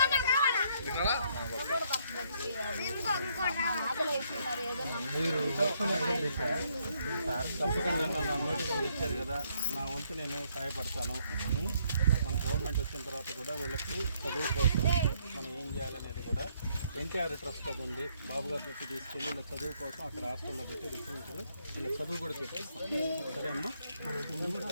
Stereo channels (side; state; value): both; inverted; correlation -0.70